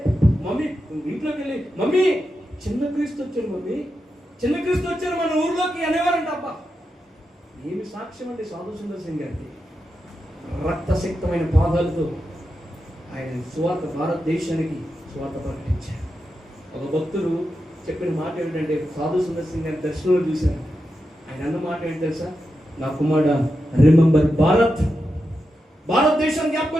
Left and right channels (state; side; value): normal; both; correlation 0.88